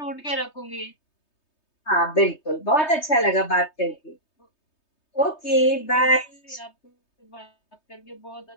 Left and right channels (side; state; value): right; late; 3.2 ms